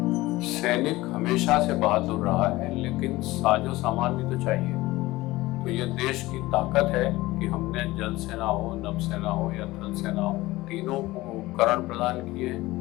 सैनिक हमेशा से बहादुर रहा है, लेकिन साजो सामान भी तो चाहिए। तो ये देश की ताकत है कि हमने जल सेना हो, नभ सेना हो या थल सेना हो, तीनों को उपकरण प्रदान किए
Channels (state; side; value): quieter; right; 19.0 dB